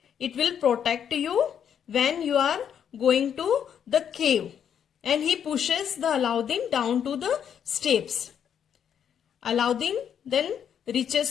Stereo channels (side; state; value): right; quieter; 8.5 dB